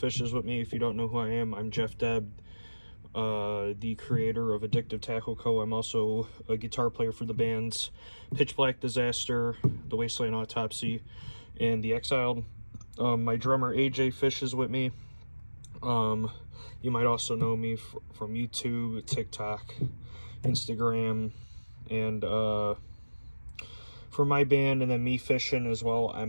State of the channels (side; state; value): both; inverted; correlation -1.00